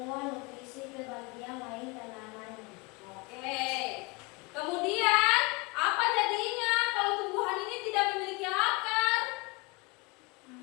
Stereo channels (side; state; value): right; quieter; 27.0 dB